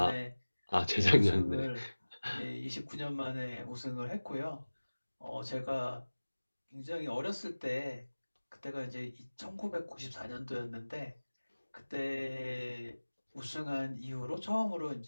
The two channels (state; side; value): inverted; both; correlation -1.00